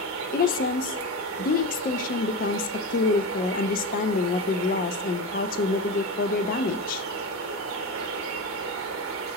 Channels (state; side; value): normal; both; correlation 0.21